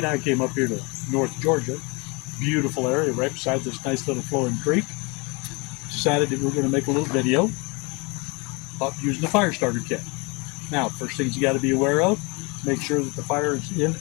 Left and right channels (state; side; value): quieter; right; 28.7 dB